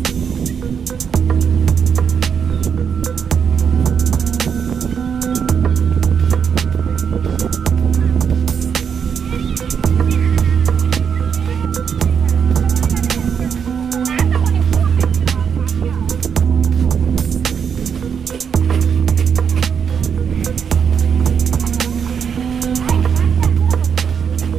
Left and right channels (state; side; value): quieter; left; 7.1 dB